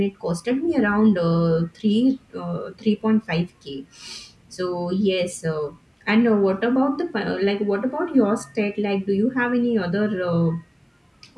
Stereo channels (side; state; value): both; identical; correlation 1.00